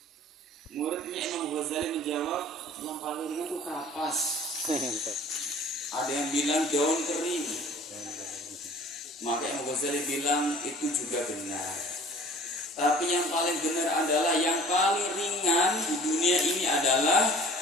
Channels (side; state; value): both; normal; correlation 0.49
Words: Muridnya Imam Ghazali menjawab, yang paling ringan itu kapas. Ada yang bilang daun kering. Maka Imam Ghazali bilang itu juga benar. Tapi yang paling benar adalah yang paling ringan di dunia ini adalah